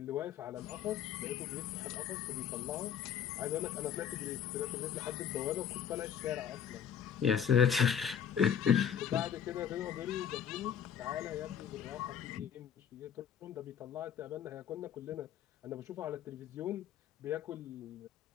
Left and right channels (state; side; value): quieter; right; 8.6 dB